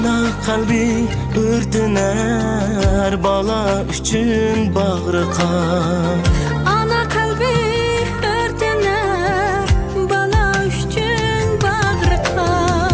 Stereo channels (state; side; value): identical; both; correlation 1.00